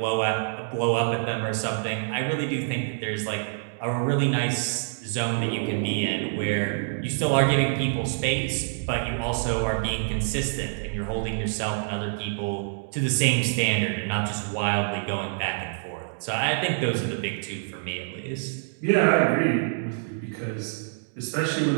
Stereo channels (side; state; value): left; silent; digital silence